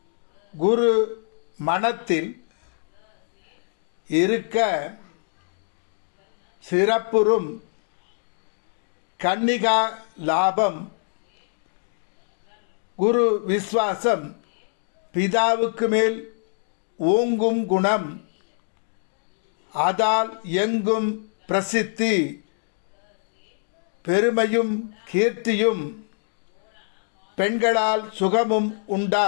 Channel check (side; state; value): right; silent; digital silence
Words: குரு மனத்தில் இருக்க சிறப்புறும் கன்னிகா லாபம். குரு விஸ்வாசம் பிதாவுக்கு மேல் ஓங்கும் குணம். அதால் எங்கும் பிரசித்தி பெருமையும் கீர்த்தியும் பெண்களால் சுகமும்